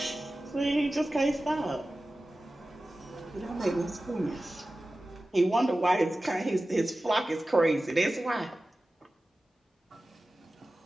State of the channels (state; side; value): normal; both; correlation 0.95